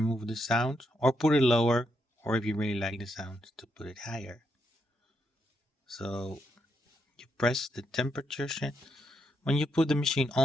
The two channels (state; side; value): normal; both; correlation 0.80